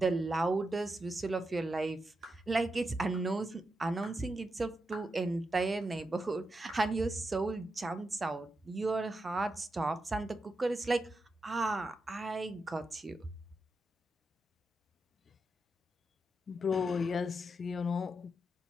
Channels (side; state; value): both; normal; correlation 0.87